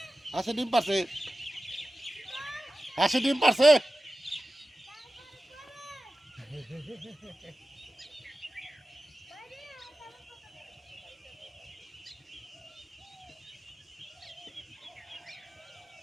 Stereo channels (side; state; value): both; normal; correlation 0.94